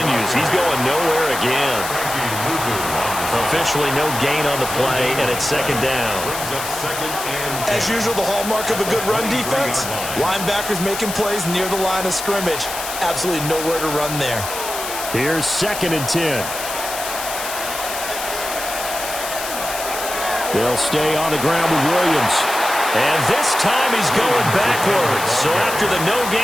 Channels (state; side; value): noise; left; hiss, 7 dB below the sound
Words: He's going nowhere again. Officially no gain on the play, and it's 2nd down. As usual, the hallmark of a good run defense, linebackers making plays near the line of scrimmage. Absolutely nowhere to run there. Here's 2nd and 10. They'll stay on the ground with Williams. And this time he's going backwards. So after the no